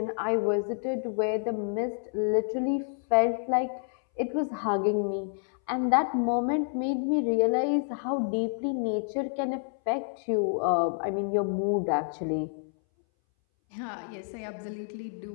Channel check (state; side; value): silent; right; 59 dB below the other